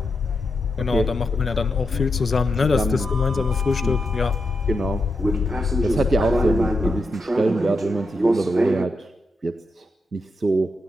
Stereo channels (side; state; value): both; normal; correlation 0.85